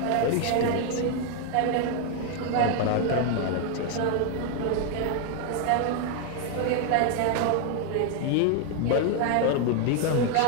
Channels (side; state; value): both; different; correlation 0.01